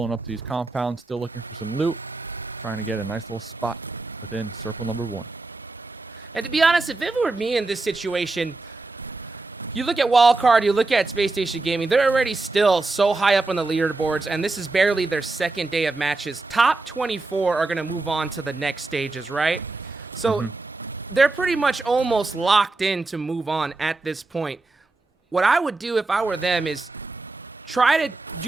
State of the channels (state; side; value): quieter; left; 3.4 dB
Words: up to these compounds, still looking for some loot, trying to get a nice little spot within circle number 1. And to be honest, if it were me in this situation, you look at Wildcard, you look at Spacestation Gaming, they're already still so high up on the leaderboards, and this is barely their second day of matches. Top 24 are going to move on to the next stages, right? So they're pretty much almost locked in to move on at this point. What I would do if I were them is try to